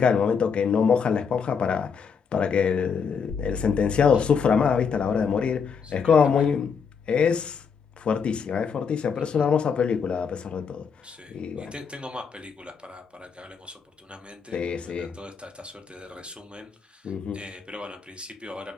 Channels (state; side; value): quieter; right; 6.2 dB